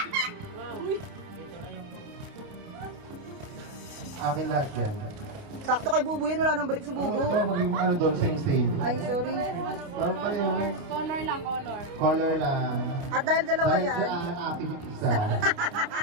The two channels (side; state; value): left; late; 29 ms